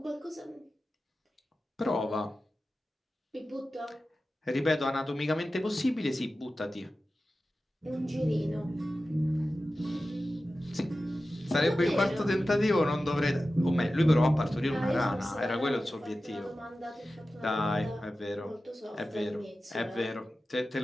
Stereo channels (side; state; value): both; normal; correlation 0.94